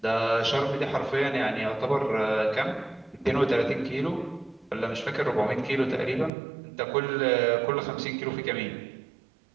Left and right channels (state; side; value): drops out; left; at 6.3 s